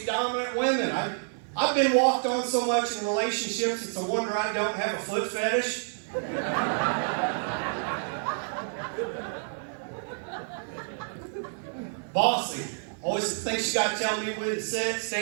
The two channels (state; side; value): silent; left; digital silence